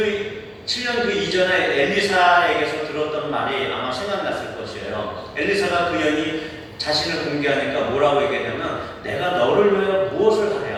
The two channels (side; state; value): both; identical; correlation 1.00